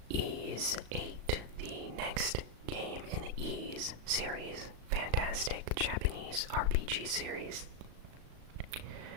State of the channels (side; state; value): left; late; 36 ms